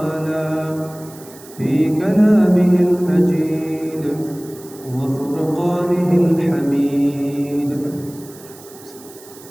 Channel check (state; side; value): noise; right; hiss, 20 dB below the sound